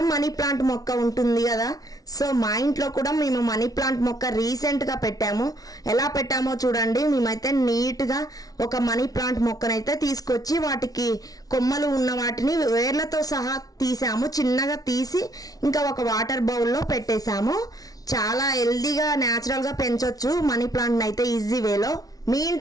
మనీ ప్లాంట్ మొక్క ఉంటుంది కదా. సో మా ఇంట్లో కూడా మేము మనీ ప్లాంట్ మొక్క రీసెంట్గా పెట్టాము. ఎలా పెట్టామో చూడండి. మేమైతే నీట్గా ఒక మనీ ప్లాంట్ మొక్కనైతే తీసుకొచ్చి వాటికి కొమ్మలు ఉన్న వాటిని వేర్లతో సహా తీసాము. చిన్నగా తీసి ఇంకా ఒక వాటర్ బౌల్లో పెట్టేశాము. చాలా హెల్దీగా న్యాచురల్గా పెంచవచ్చు మనీ ప్లాంట్ని అయితే ఈజీ వేలో. మీ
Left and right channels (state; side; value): late; right; 0.18 ms